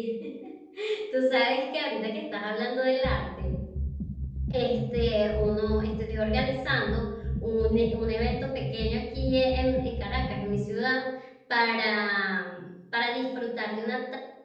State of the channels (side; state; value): both; identical; correlation 1.00